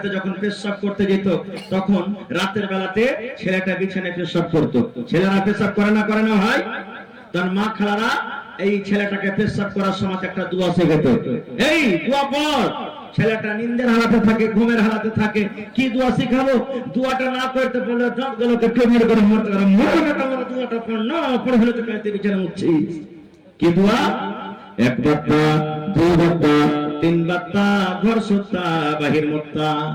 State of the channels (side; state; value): both; identical; correlation 1.00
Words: যখন পেশাব করতে যেত, তখন রাতের বেলাতে ছেলেটা বিছানায় পেশাব করতো। ছেলেরা পেশাব করে না হয়, তার মা খালারা এই ছেলেটাকে পেশাব করার সময় একটা দোয়া শেখাতো। এই দোয়া পড়। ছেলেটা নিন্দের হালাতে থাকে, ঘুমের হালাতে থাকে, কি দোয়া শিখাবো? দোয়াটা না করতে পারলে দাঁতগুলোকে টেবিল করে মরতে পারে। দোয়াটা পড় না, পড়ে হলে তো কাঁদতে বিছানা উঠছিস। কি দোয়া? 1 বাত্তা, 2 বাত্তা, 3 বাত্তা, ঘর সুত্তা বাহির মুত্তা।